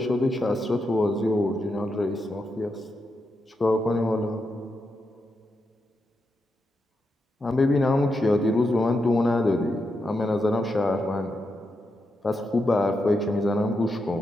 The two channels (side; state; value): both; normal; correlation 0.85